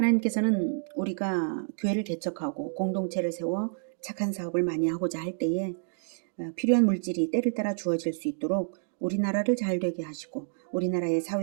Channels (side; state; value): left; silent; digital silence